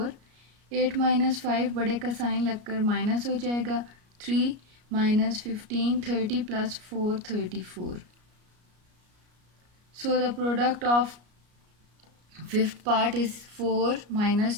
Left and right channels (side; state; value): left; late; 33 ms